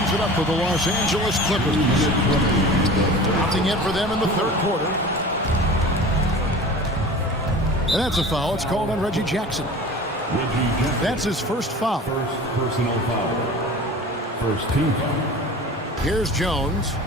it up for the Los Angeles Clippers. Nothing in for them in the third quarter. And that's a foul. It's called on Reggie Jackson. That's his first foul. First personal foul. First team foul. Here's Jones.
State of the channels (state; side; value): normal; both; correlation 0.38